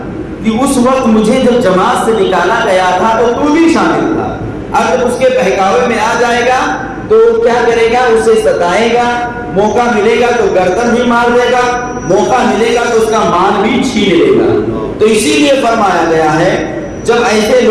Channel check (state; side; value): identical; both; correlation 1.00